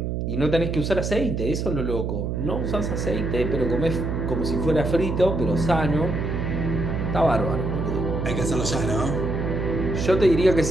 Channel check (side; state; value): right; noise; hum, 2 dB below the sound